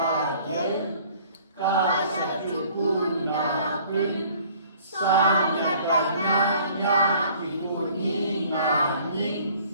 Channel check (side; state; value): both; inverted; correlation -0.54